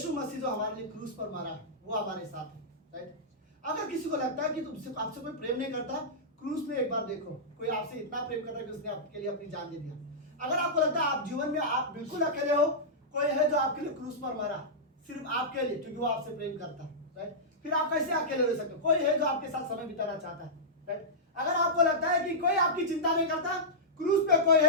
मसीह जो हमारे लिए क्रूस पर मरा वो हमारे साथ है, राइट। अगर किसी को लगता है कि तुमसे आपसे कोई प्रेम नहीं करता, क्रूस में एक बार देखो, कोई आपसे इतना प्रेम करता है कि उसने आपके लिए अपनी जान दे दिया। अगर आपको लगता है आप जीवन में आप बिल्कुल अकेले हो, कोई है जो आपके लिए क्रूस पर मरा सिर्फ आपके लिए, क्योंकि वो आपसे प्रेम करता है, राइट। फिर आप कैसे अकेले रह सकते हो? कोई है जो आपके साथ समय बिताना चाहता है, राइट। अगर आपको लगता है कि कोई आपकी चिंता नहीं करता, क्रूस पे कोई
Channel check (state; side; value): normal; both; correlation -0.14